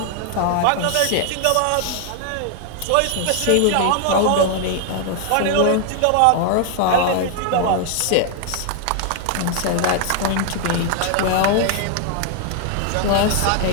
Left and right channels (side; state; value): both; different; correlation 0.00